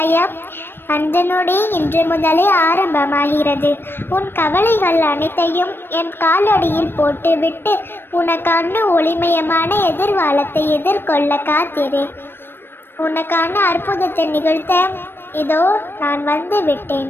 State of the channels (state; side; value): late; right; 0.10 ms